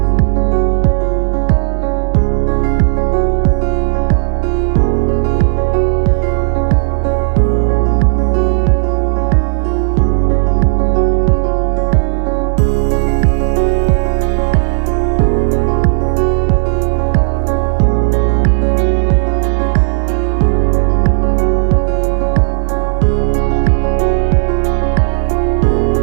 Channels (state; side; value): silent; left; 72 dB below the other